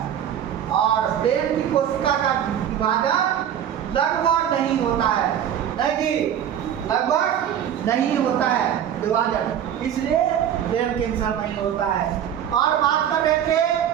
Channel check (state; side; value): quieter; left; 9.7 dB